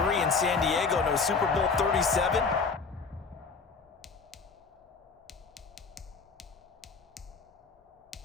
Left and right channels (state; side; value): quieter; right; 4.9 dB